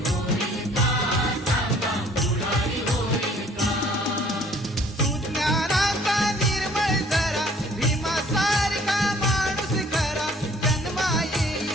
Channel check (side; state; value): both; normal; correlation 0.57